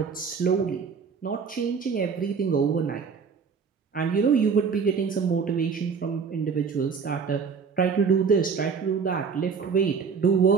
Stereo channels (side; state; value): left; quieter; 5.8 dB